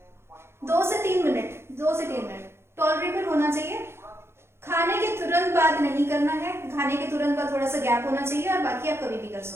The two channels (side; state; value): left; late; 0.12 ms